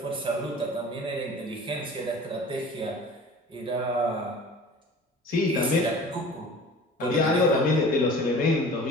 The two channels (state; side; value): normal; both; correlation 0.43